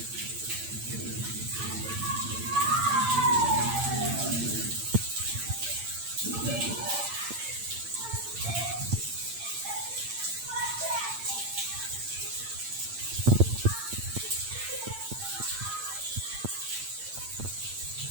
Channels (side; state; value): left; late; 8.8 ms